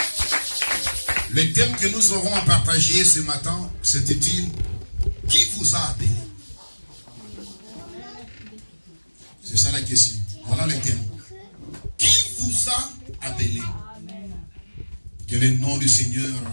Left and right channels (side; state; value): both; inverted; correlation -1.00